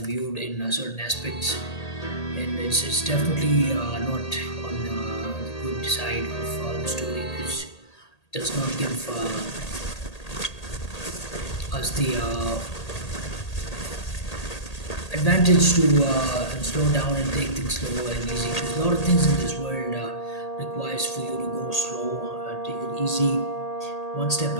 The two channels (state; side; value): late; right; 1.8 ms